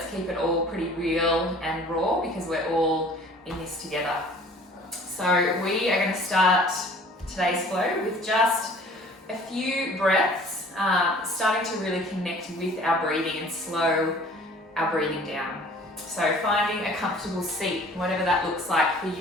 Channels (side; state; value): both; normal; correlation 0.50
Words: keep it all pretty real and raw because we're all in this together. So we are going to start today's flow with just a few breaths, starting to really connect with our breathing and slow our breathing down. So finding a comfortable seat, whatever that looks like for